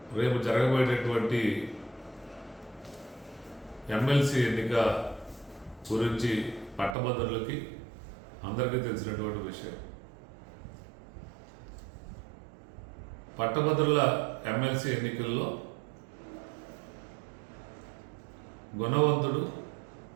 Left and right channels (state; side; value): drops out; left; at 7.0 s